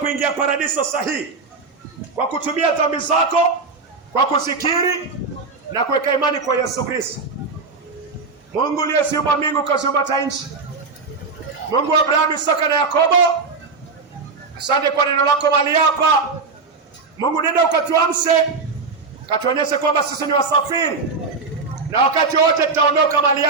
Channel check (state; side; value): quieter; left; 4.3 dB